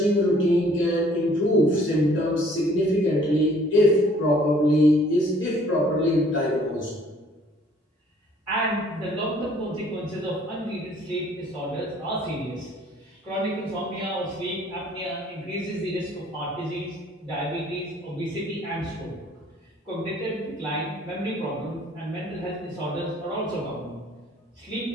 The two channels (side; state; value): both; normal; correlation 0.58